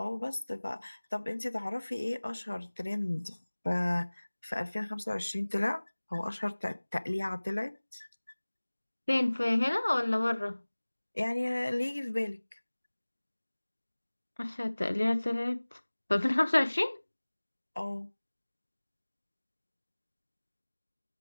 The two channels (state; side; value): inverted; both; correlation -1.00